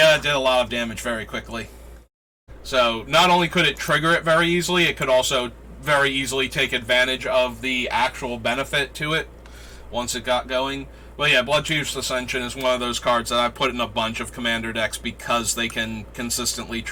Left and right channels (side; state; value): both; identical; correlation 1.00